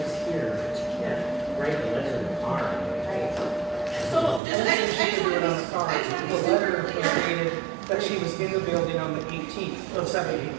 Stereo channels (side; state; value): left; drops out; at 4.4 s